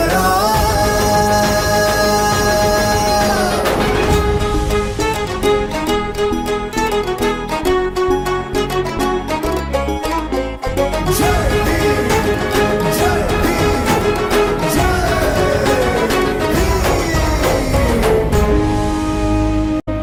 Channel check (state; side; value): identical; both; correlation 1.00